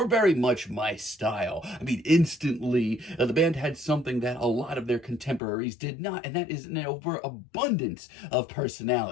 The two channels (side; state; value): right; drops out; at 5.4 s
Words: very much my style. Instantly, the band had something that a lot of their contemporaries did not, and that is an overabundance of